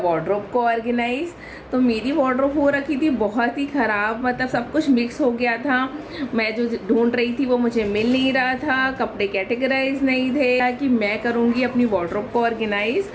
को ऑर्गेनाइज। तो मेरी वार्डरोब हो रखी थी बहुत ही ख़राब, मतलब सब कुछ मिक्स हो गया था। मैं जो ढूंढ रही थी वो मुझे मिल नहीं रहा था, कपड़े कैटेगराइज नहीं थे कि मैं करूँगी अपनी वार्डरोब को ऑर्गेनाइज।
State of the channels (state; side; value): identical; both; correlation 1.00